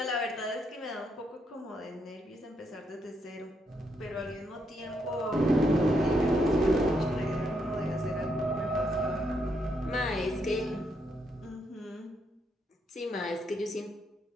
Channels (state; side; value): normal; both; correlation 0.77